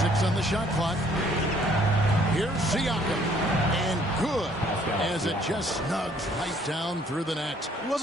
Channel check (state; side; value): normal; both; correlation 0.62